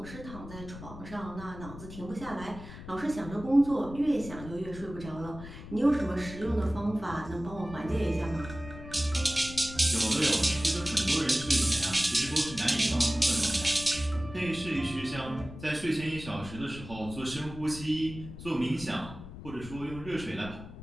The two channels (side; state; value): left; noise; rumble, 13 dB below the sound